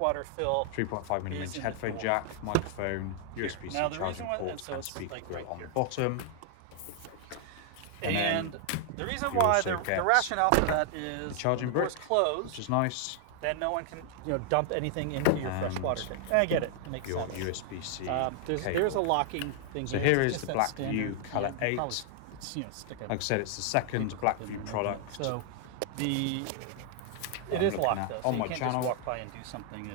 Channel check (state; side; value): different; both; correlation 0.00